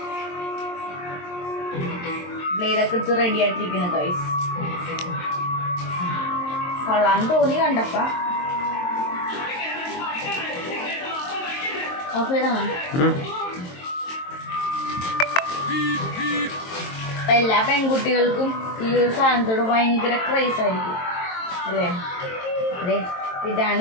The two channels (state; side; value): late; right; 22 ms